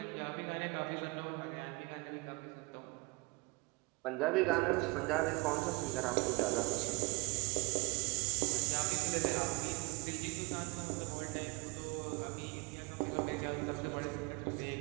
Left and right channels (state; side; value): quieter; left; 26.8 dB